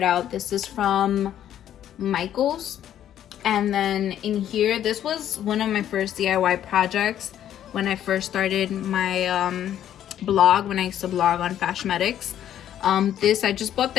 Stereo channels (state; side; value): quieter; right; 10.9 dB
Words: out. This is from Michael's. And then in here, this was one of my first DIY projects when I first started my blog, when I used to blog on Fashmetics. This, I just bought